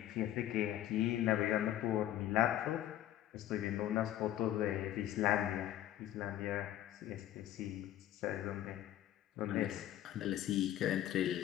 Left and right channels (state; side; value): quieter; right; 12.6 dB